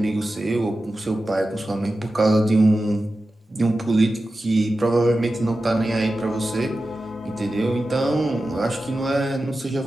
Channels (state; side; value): normal; both; correlation 0.93